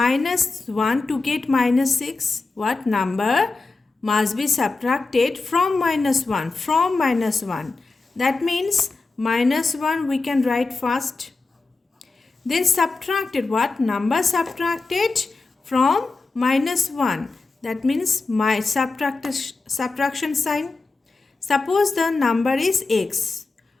1 to get minus 6? What number must be subtracted from minus 1? From minus 1. That means minus 1 we can write first. Then subtracted. What number subtracted from minus 1? That means my subtraction sign. Suppose the number is x.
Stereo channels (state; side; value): quieter; right; 3.8 dB